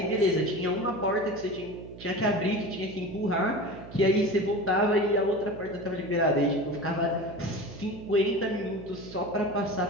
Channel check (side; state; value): right; noise; hum, 16 dB below the sound